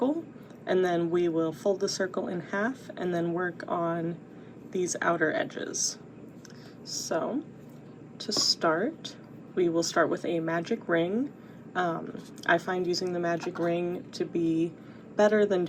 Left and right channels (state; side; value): identical; both; correlation 1.00